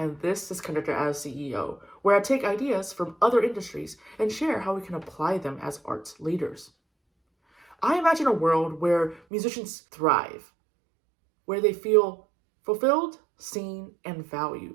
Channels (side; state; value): left; drops out; at 9.2 s